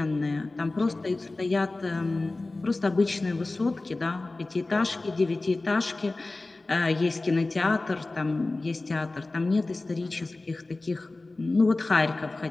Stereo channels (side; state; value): right; quieter; 3.1 dB